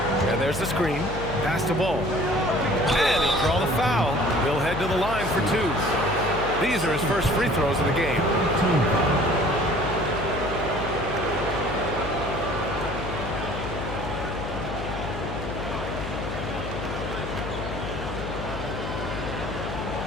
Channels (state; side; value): noise; left; hum, 7 dB below the sound